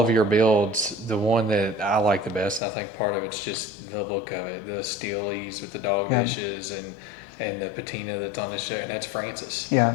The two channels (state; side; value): drops out; right; at 2.6 s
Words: your builds, the one that I like the best, and I think part of it's just the look of it, the Steelies with the dog dishes and the patina that's on the show, and that's Francis. Yeah.